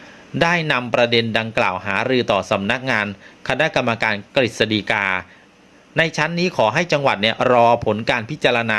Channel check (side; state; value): both; identical; correlation 1.00